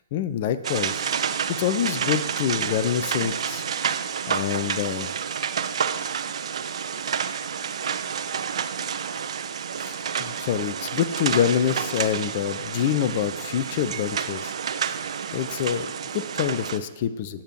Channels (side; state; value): both; inverted; correlation -0.35